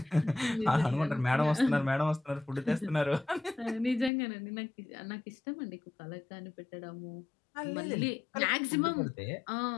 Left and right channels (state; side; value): drops out; right; at 4.1 s